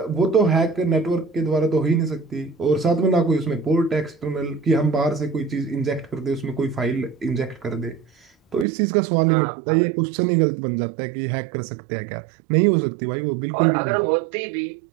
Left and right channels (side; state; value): left; drops out; at 8.7 s